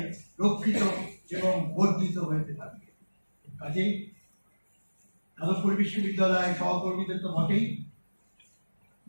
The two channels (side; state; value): both; inverted; correlation -1.00